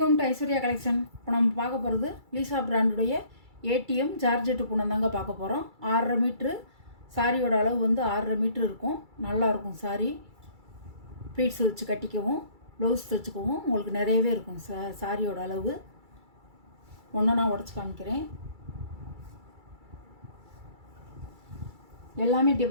to Aishwarya collection. இப்போ நம்ம பார்க்க போகிறது லீசா பிராண்டுடைய ஏடிஎம் ஜார்ஜெட்டு பூனம் தாங்க பார்க்க போகிறோம். 6.5 மீட்ரு சாரியோட அளவு வந்து 6.5 மீட்ரு இருக்கும். நல்லாயிருக்கும் சாரி. ப்ளீட்ஸ் வச்சு கட்டிக்கவும் ப்ளவுஸ் தைச்சிக்கவும் உங்களுக்கு நிறையவே இருக்கும். சாரியோட அளவு ஒன்று நான் உடச்சி காமிக்கிறேன். எல்லாமே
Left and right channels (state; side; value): late; left; 2.3 ms